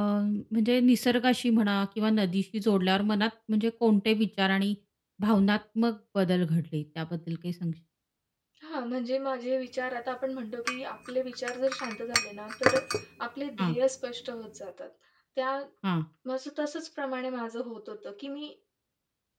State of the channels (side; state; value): both; identical; correlation 1.00